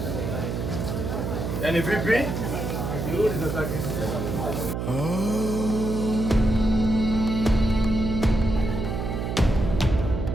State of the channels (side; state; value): right; noise; hum, 3 dB below the sound